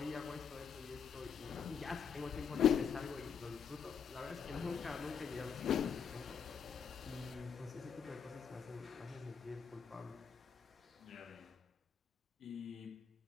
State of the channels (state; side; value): quieter; right; 7.0 dB